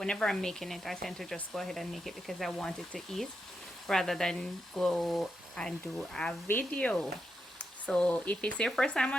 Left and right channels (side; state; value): both; normal; correlation 0.85